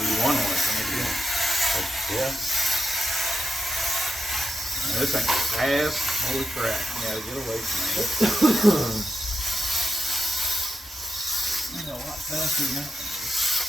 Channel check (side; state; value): both; normal; correlation 0.87